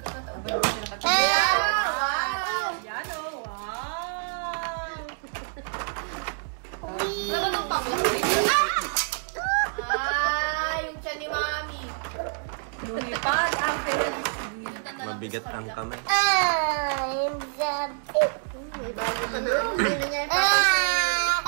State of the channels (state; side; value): silent; left; digital silence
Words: Yeah! Wow! Yan o, wow! Wala ba itong panglas? Ah! Yung siya ni Mami. Lumipad ang Felix. Mabigat ang kamay. I'm jumping.